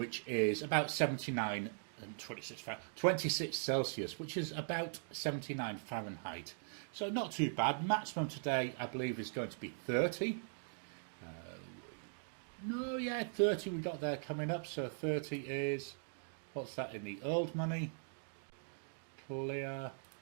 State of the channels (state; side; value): silent; left; digital silence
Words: is about 79 and 26 Celsius, which is about 79 Fahrenheit. So not too bad. Maximum today, I believe, is going to be 30. 30 we got there coming up. So 30 is, what's that in the old money? Clear